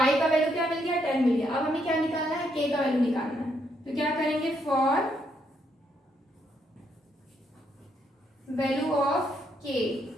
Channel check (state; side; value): normal; both; correlation 0.75